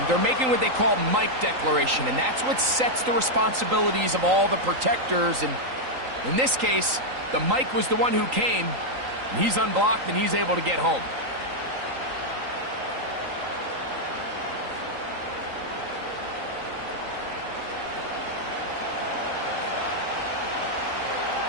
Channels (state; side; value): late; left; 3.9 ms